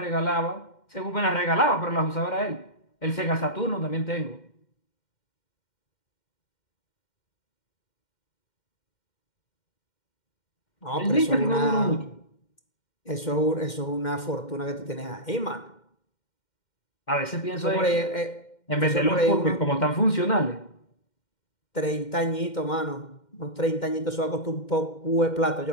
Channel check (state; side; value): late; right; 2.1 ms